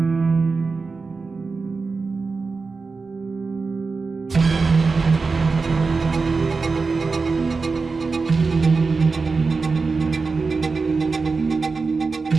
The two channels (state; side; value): quieter; left; 4.4 dB